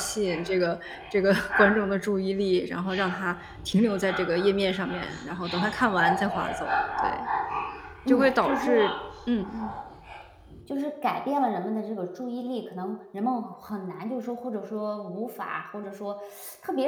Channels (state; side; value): identical; both; correlation 1.00